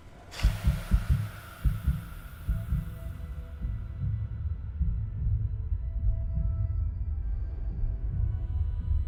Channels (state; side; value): identical; both; correlation 1.00